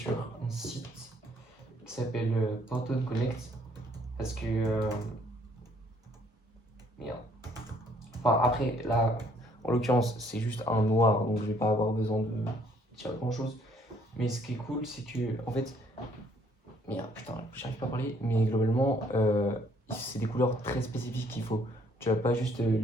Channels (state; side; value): normal; both; correlation 0.64